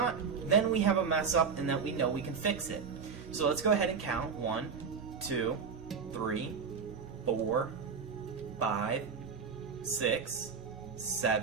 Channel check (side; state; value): left; quieter; 5.8 dB